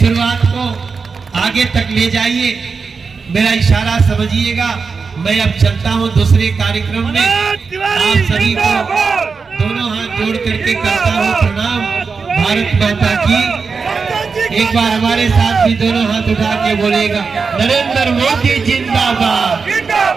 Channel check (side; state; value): left; quieter; 5.0 dB